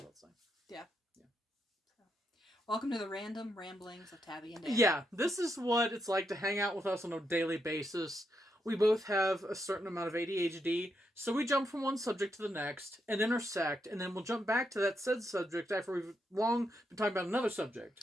saying. Yeah. Yeah. So, welcome to the random ramblings of Tabby and Dani. Yeah. This is what it's like to hang out with us on a daily basis. We both have a certain amount of ADHD, so we jump from one subject to the next and intersect, and then we'll jump back to that said subject after we've long been talking about another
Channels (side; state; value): both; normal; correlation 0.81